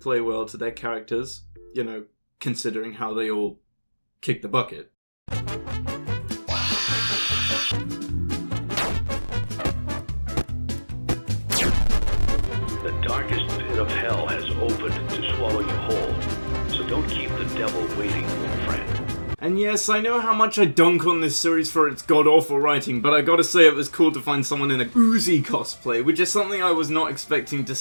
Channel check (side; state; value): both; inverted; correlation -1.00